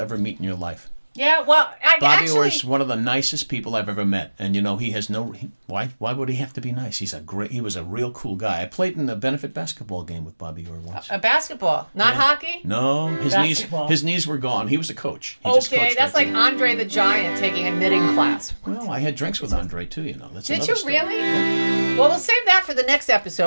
ever meet in your life. Yeah, well, Bobby Orr is one of the nicest people I've ever met, and he has why would he have to be nice? He was a real cool guy. I played in a benefit basketball game with Bobby Orr once. A basketball, not hockey? No, his knees were gone. He was a coach. Okay, that's like Andre the Giant taking a knitting class. Well, I had drinks with Andre too. Did you really? Yeah. Well, we'll save that for the next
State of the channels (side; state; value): both; inverted; correlation -1.00